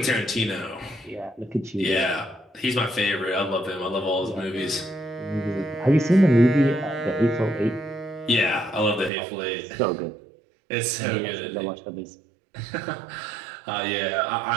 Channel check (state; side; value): drops out; left; at 9.1 s